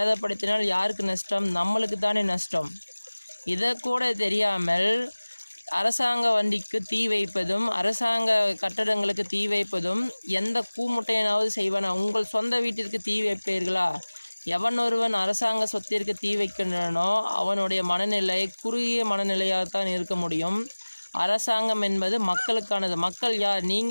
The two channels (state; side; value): inverted; both; correlation -1.00